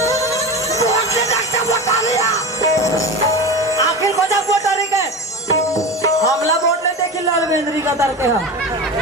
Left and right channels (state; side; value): normal; both; correlation 0.27